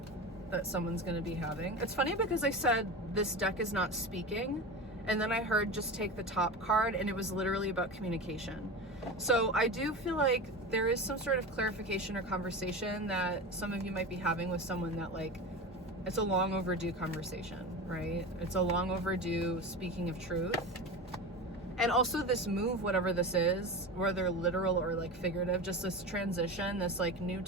that someone's going to be having. It's funny because I said this deck is not speaking, and then I heard just take the top card, and it was literally about communication. So I do feel like there is some sort of clarification or conversation that some of you might be having with someone that, like, it's a long overdue conversation, right? It's a long overdue speaking of truth. And also this move, whatever this is, whether literal or like figurative, just this transition, this like new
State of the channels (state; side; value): normal; both; correlation 0.27